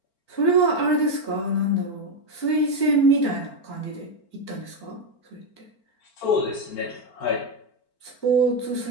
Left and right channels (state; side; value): late; right; 4.4 ms